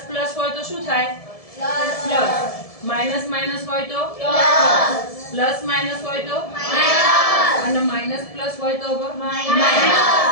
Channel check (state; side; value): late; right; 1.7 ms